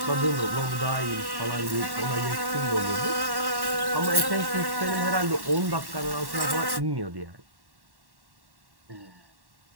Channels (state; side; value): late; left; 1.1 ms